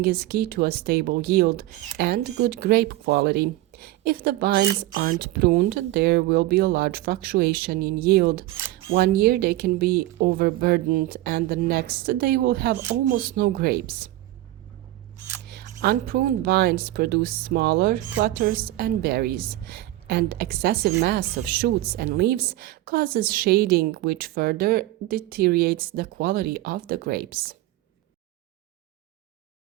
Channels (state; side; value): quieter; left; 16.2 dB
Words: is key to a stable yield and good grape quality. If the vines aren't pruned, there will be a large fluctuation in yield. One year they can be overburdened, and the next they will have almost no grapes. Unpruned vines produce smaller clusters and berries, and excessive mass of shoots and leaves causes shading, which further deteriorates the quality of the grapes.